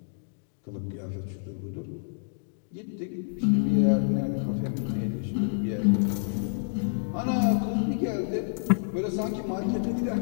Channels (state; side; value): silent; right; digital silence